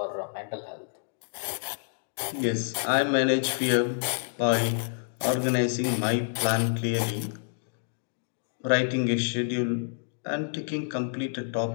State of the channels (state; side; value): silent; right; digital silence